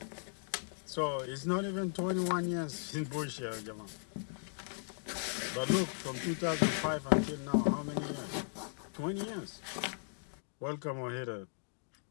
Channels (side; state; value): right; silent; digital silence